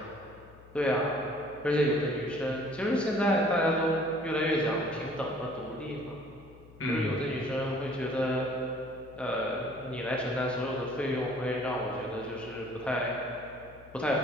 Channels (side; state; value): left; noise; hum, 22 dB below the sound